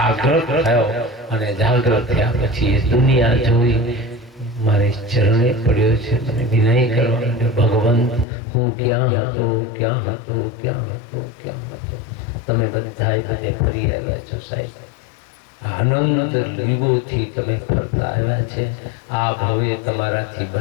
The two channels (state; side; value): drops out; right; at 8.2 s